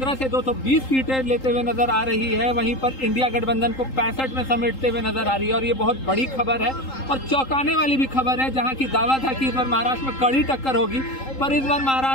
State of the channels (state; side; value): late; right; 3.8 ms